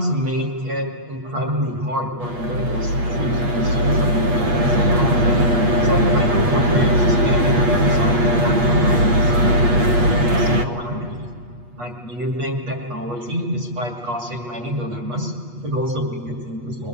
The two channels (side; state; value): left; late; 8.3 ms